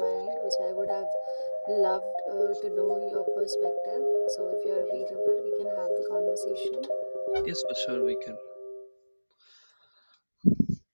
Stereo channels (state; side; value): inverted; both; correlation -1.00